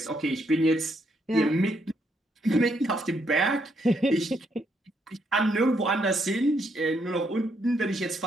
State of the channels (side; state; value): both; normal; correlation 0.75